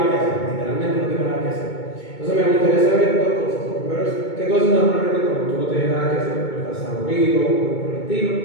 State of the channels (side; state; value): right; late; 2.2 ms